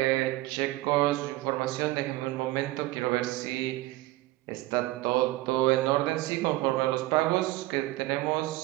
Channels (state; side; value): quieter; left; 18.3 dB